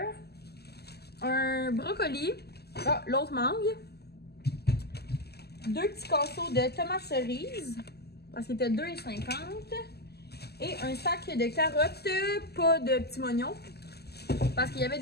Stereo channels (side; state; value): right; late; 0.47 ms